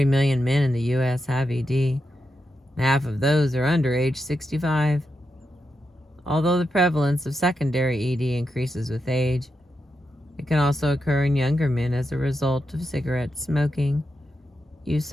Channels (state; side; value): normal; both; correlation 0.86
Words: million men in the U.S. have ED, and half of those are under age 65. Although the prevalence of secondary ED increases with age, it can also occur in younger men as a result of cigarette smoking,